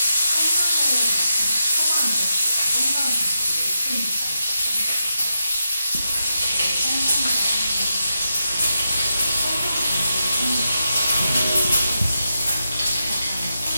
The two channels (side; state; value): both; inverted; correlation -0.86